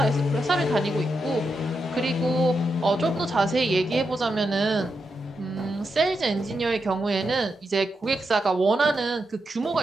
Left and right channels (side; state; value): both; normal; correlation 0.86